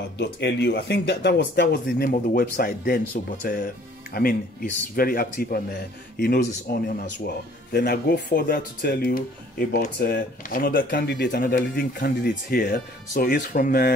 I think that was the name of the website then. So, but I mean, he's very active, and he knows his onion as well. Then I go further to tell you about another leading candidate here. So he's from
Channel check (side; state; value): both; normal; correlation 0.56